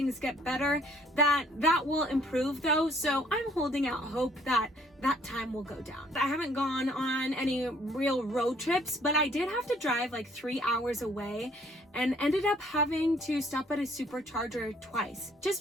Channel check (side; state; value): both; normal; correlation 0.61